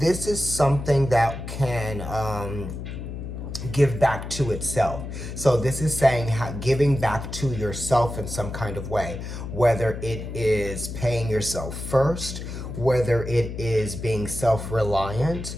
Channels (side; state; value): left; noise; hum, 7 dB below the sound